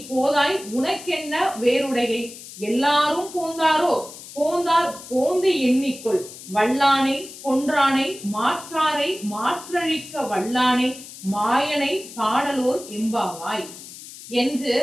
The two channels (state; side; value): noise; left; hiss, 15 dB below the sound